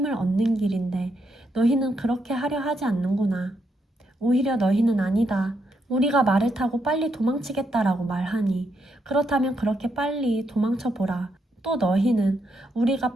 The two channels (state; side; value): normal; both; correlation 0.79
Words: 얻는 길인데 너희는 그렇게 하려 하지 않는구나. 오히려 너희는 아니다. 우리가 말을 타고 빨리 도망치겠다라고 말하니 그렇다면 그렇게 빨리 도망쳐보라. 또 너희는 우리가